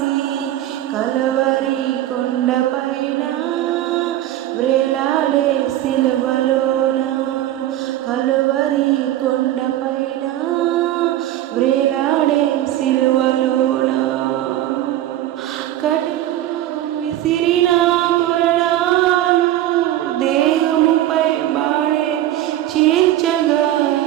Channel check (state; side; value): quieter; left; 13.5 dB